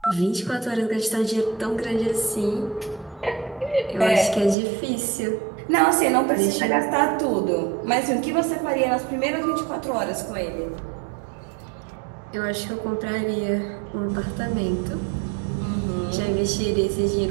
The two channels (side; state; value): left; drops out; at 4.5 s